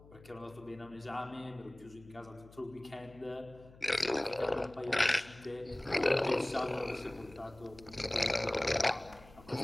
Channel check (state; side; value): noise; left; hum, 22 dB below the sound